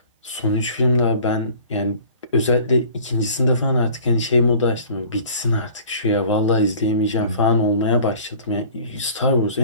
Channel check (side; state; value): both; inverted; correlation -0.48